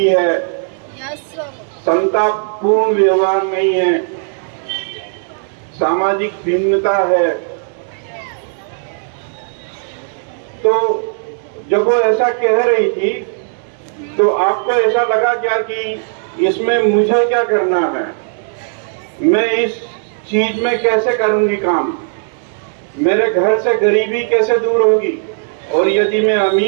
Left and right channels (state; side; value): silent; left; digital silence